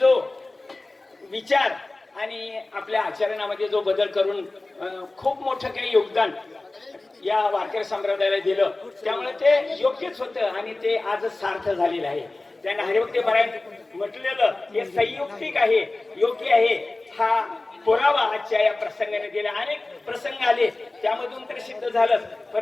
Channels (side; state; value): right; quieter; 3.1 dB